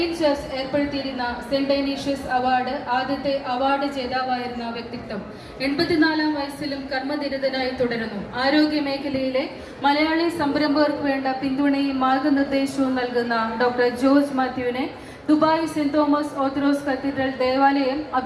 church ഏർപ്പെടുത്തിയിരുന്ന saint Dionysius award ആദ്യത്തെ അവാർഡ് ജേതാവായിരുന്ന വ്യക്തിത്വം 84 വയസ്സിലും കർമ്മനിരതനായി തുടരുന്നു. ആരോഗ്യ മേഖലയിലെ മലയാളി സംരംഭകർക്ക് വേണ്ട പിന്തുണയും മാർഗനിർദ്ദേശവും നൽകുന്ന ഡോക്ടർ ജോർജ് മാത്യുവിനെ Dubai saint Thomas orthodox cathedral ദേവാലയം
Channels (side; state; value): both; identical; correlation 1.00